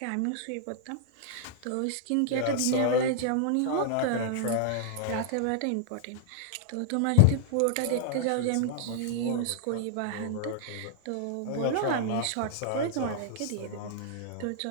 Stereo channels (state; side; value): different; both; correlation -0.01